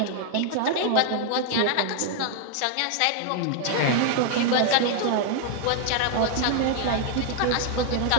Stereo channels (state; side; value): different; both; correlation 0.00